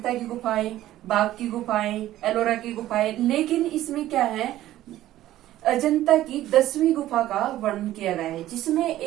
की गुफाएं, बाघ की गुफाएं, एलोरा की गुफाएं, लेकिन इसमें क्या है, अजंता की 10वीं गुफा का वर्णन किया गया है, जिसमें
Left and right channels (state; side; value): quieter; left; 14.1 dB